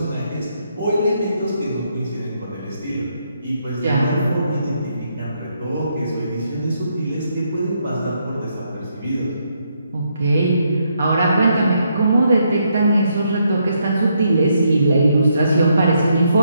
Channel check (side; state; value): both; inverted; correlation -0.76